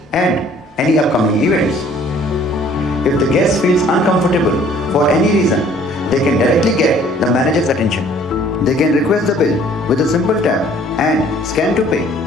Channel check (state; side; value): normal; both; correlation 0.56